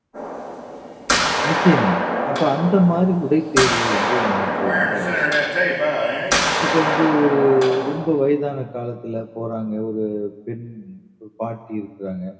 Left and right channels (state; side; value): identical; both; correlation 1.00